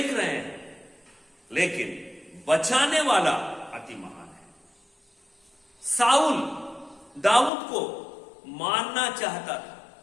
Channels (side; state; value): right; drops out; at 7.5 s